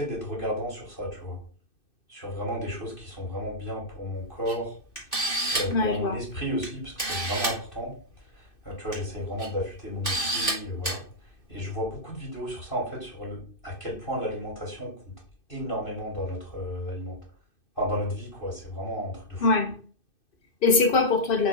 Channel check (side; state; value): right; late; 2.6 ms